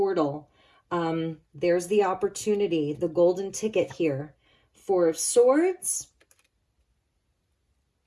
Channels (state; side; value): identical; both; correlation 1.00